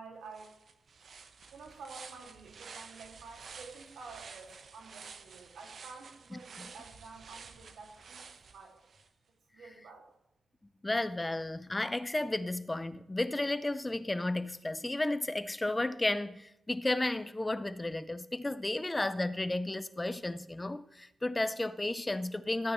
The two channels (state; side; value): normal; both; correlation 0.98